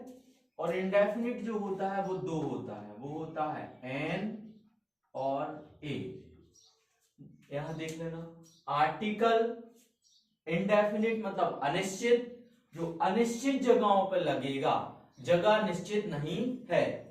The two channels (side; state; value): both; identical; correlation 1.00